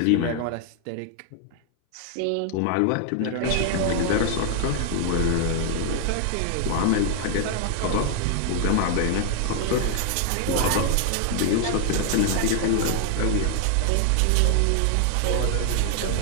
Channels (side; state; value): both; different; correlation 0.00